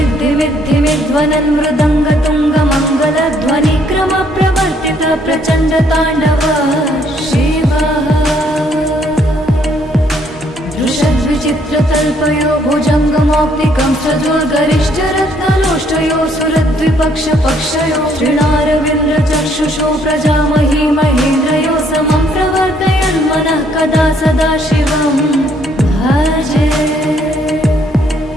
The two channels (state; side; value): normal; both; correlation 0.67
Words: भ्रमद्भुजङ्गमश्वसाद्विनीर्गमत्क्रमस्फुरत्करालभालहव्यवाधिविद्धिविद्धिविध्वनन् मृदङ्गतुङ्गमङ्गलध्वनिक्रम प्रवर्तित प्रचण्ड ताण्डव शिवः दृशद्विचित्रतल्पयो भुजङ्गमौक्तिकं सजोर्गरिष्ठरत्नलोष्टयो सुरद्विपक्षपक्षयो तृणारविन्द्रचक्षुषो प्रजामही महेन्द्रयो समं प्रवर्तयन्मनः कदा सदा शिवं भजे